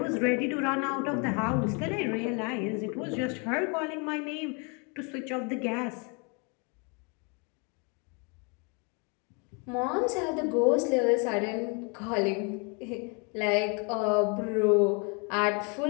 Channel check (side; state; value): right; quieter; 33.9 dB